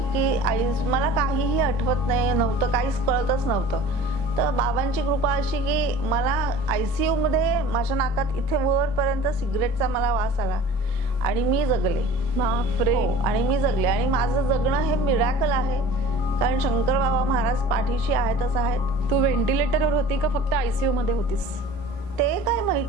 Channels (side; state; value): both; normal; correlation 0.43